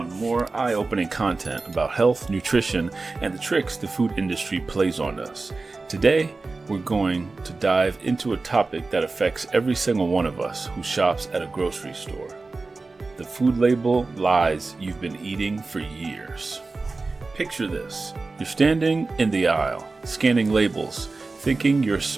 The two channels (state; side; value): quieter; left; 3.7 dB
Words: more eye-opening content about health, nutrition, and the tricks the food industry plays on us. Today, we're going to dive into a topic that affects every single one of us who shops at a grocery store. The food label lies you've been eating for years. Picture this. You're standing in the aisle, scanning labels, thinking you're